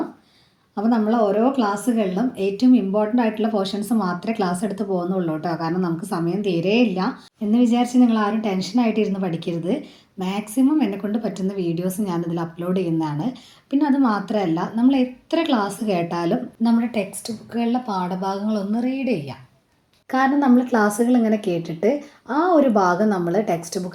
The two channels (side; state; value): both; identical; correlation 1.00